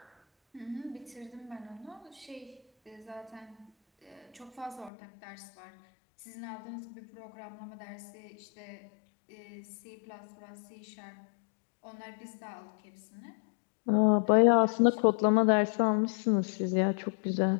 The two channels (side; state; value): right; drops out; at 4.9 s